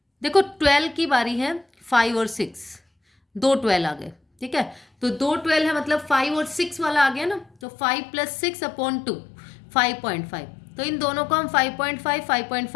देखो 12 की बारी है, 5 और 6, 2 12 आ गए। ठीक है, तो 2 12 है मतलब 5 और 6 वाला आ गया ना, तो 5 + 6 अपॉन 2, 5.5। तो इन दोनों को हम 5.5,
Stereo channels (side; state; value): right; drops out; at 7.5 s